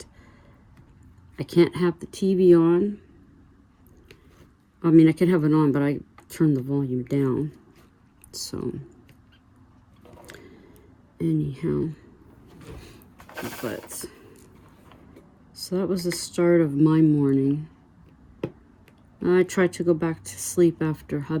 I can't have the TV on. I mean, I can have it on, but I turn the volume down. So anyhow, but so that was the start of my morning. I tried to go back to sleep after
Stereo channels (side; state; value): both; identical; correlation 1.00